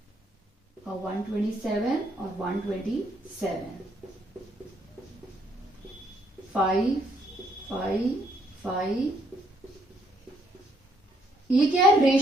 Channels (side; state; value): both; normal; correlation 0.70